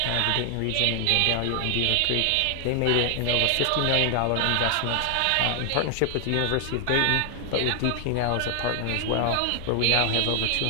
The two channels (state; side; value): different; both; correlation 0.00